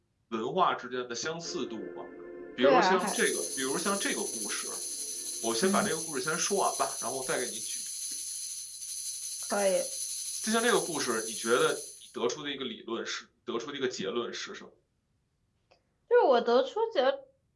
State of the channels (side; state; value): both; identical; correlation 1.00